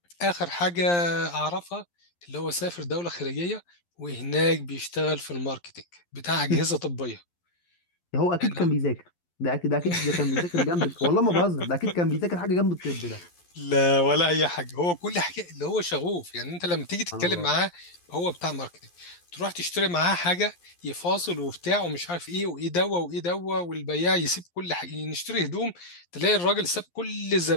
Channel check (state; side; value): late; right; 11 ms